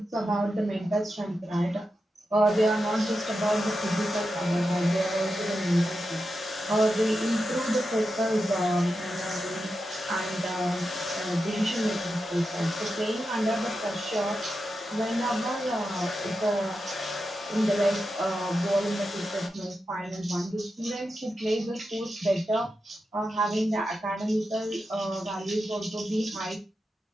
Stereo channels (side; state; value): both; normal; correlation 0.89